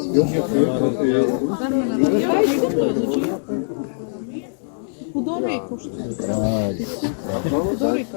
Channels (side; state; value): right; silent; digital silence